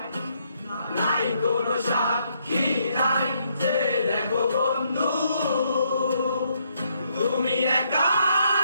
নাই কোনো সাক্ষী নাই যে দেখো বন্ধু তুমি একা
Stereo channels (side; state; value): both; inverted; correlation -0.73